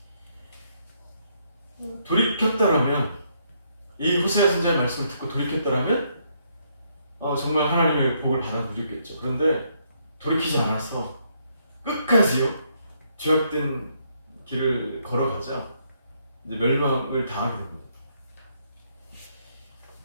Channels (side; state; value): both; inverted; correlation -0.73